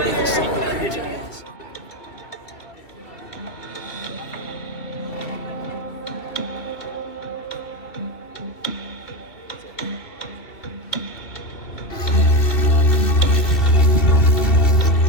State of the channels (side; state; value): right; late; 2.9 ms